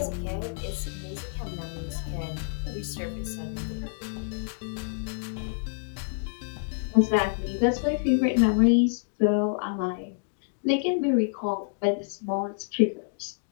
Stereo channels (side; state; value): right; silent; digital silence